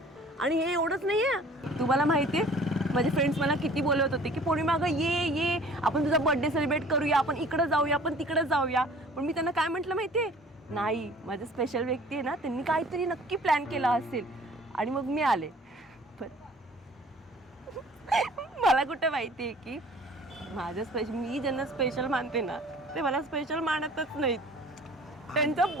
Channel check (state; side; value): normal; both; correlation 0.50